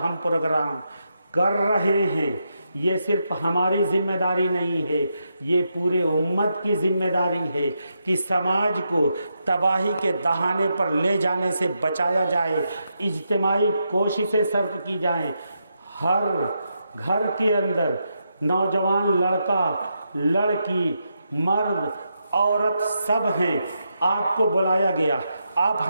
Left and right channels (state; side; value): inverted; both; correlation -0.83